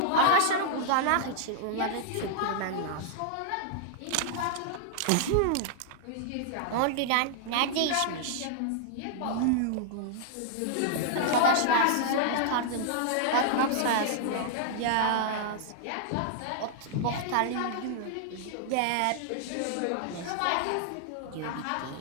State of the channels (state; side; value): different; both; correlation -0.01